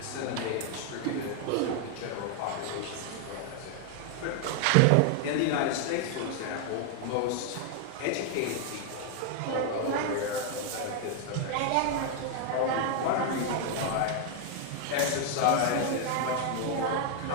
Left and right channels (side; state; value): both; different; correlation 0.00